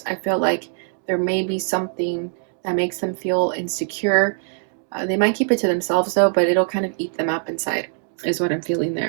I feel like there may be something that makes them feel insecure. They might keep it to themselves though, but it'll kind of eat them up inside, is what I'm feeling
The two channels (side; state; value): left; silent; 64 dB below the other